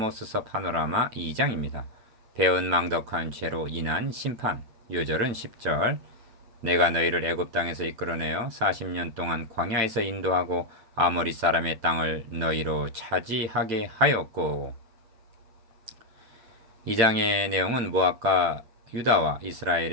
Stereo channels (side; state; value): left; late; 8.9 ms